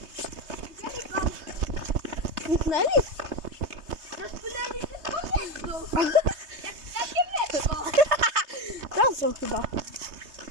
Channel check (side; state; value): left; late; 3.2 ms